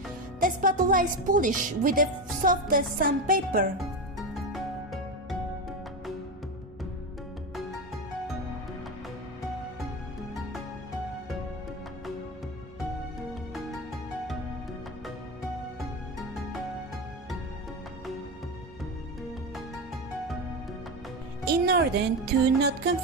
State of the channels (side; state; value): both; normal; correlation 0.17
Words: the spatula is polished with the softest sandpaper. In order to not